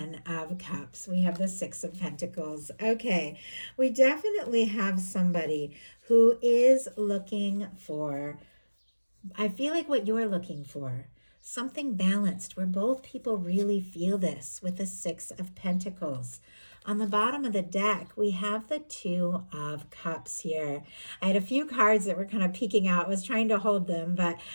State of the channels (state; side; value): inverted; both; correlation -1.00